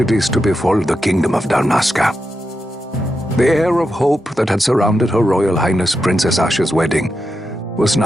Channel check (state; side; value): normal; both; correlation 0.87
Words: to befall the Kingdom of Dalmasca. The air of hope that had surrounded Her Royal Highness Princess Asha's wedding was